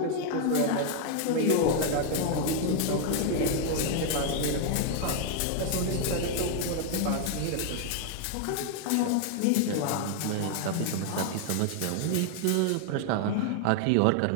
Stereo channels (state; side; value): different; both; correlation 0.00